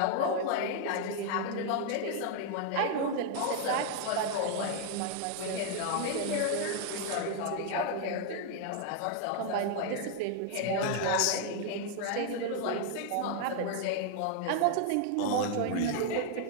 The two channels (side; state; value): both; different; correlation 0.00